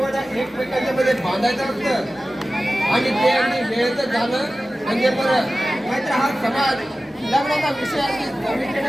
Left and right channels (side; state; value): both; normal; correlation 0.95